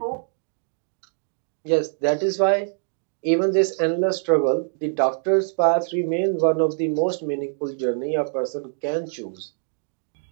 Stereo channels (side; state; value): left; silent; digital silence